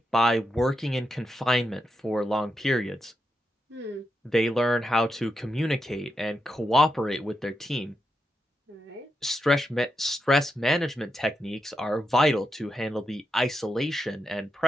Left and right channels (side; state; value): both; normal; correlation 0.85